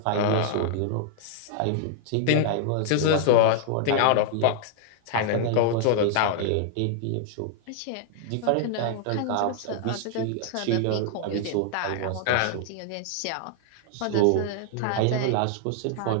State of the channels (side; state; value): both; different; correlation -0.01